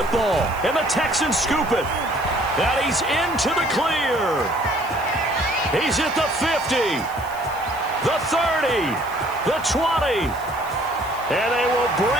And the Texans scoop it. And he's into the clear. He's at the 50, the 30, the 20. And they will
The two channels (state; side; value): noise; right; hiss, 20 dB below the sound